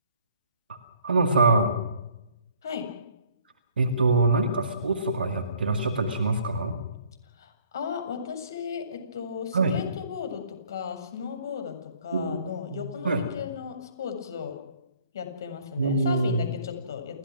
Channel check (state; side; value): inverted; both; correlation -0.58